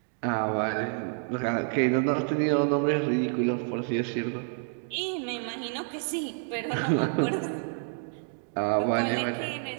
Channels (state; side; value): silent; left; 59 dB below the other